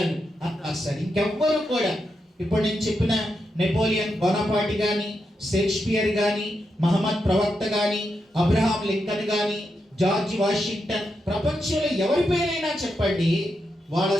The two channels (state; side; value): normal; both; correlation 0.85